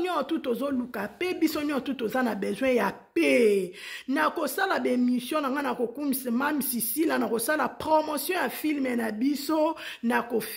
tozoluka pe biso nyoto toza na besoin ya pe na kosala ba émission na nga na kokumisa mam Sisila na kosala promotion ya film na biso na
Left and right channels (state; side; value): identical; both; correlation 1.00